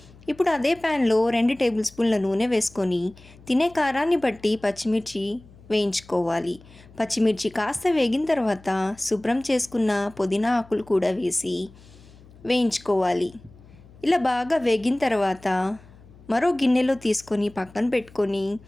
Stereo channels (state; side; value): noise; left; hum, 23 dB below the sound